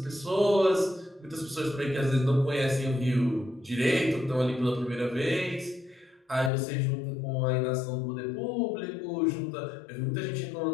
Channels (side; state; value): right; drops out; at 6.5 s